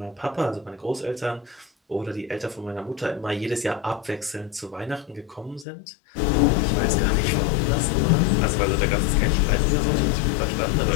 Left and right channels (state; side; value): drops out; right; at 5.7 s